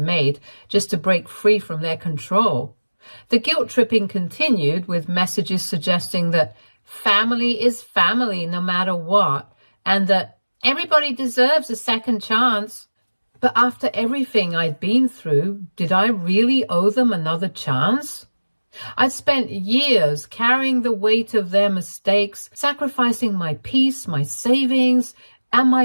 just to break free from their control. The guilt tripping continued with messages suggesting that family is family no matter what, and that everybody deserves a second chance. But after everything I'd been through, did I really owe them another chance? I'd spent years carrying the weight of their mistakes, sacrificing my peace, my savings, and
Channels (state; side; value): inverted; both; correlation -1.00